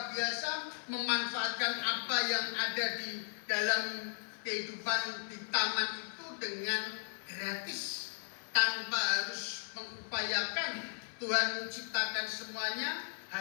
biasa, memanfaatkan apa yang ada di dalam kehidupan di taman itu dengan gratis, tanpa harus mengupayakan. Tuhan menciptakan semuanya,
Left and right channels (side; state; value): right; silent; 54 dB below the other